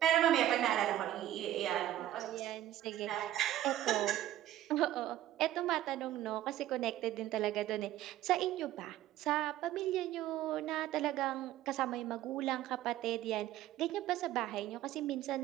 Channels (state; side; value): quieter; left; 13.3 dB